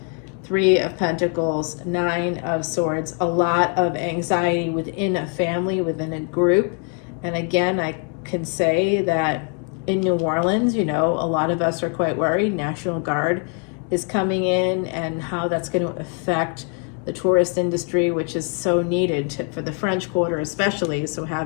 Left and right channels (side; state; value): right; quieter; 39.0 dB